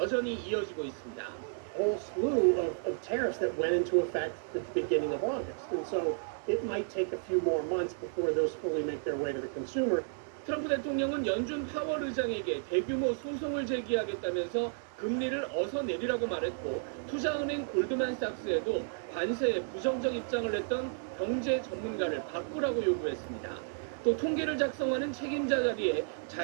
이어지고 있습니다. whole slew of tariffs that went into effect at the beginning of August. And so it might take a few more months before those fully make their way to the consumer. 트럼프 대통령은 연준 파월 의장에게 대규모 소송을 제기하겠다면서 금리를 어서 내리라고 말했고 투자은행 골드만삭스에도 관세에 부정적 입장을 냈던 경제 전문가를 바꾸라고 요구했습니다. 또 통계를 작성하는 책임자 자리에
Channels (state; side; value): silent; left; digital silence